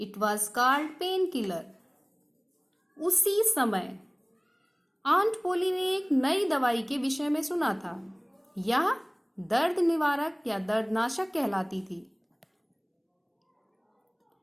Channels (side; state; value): both; identical; correlation 1.00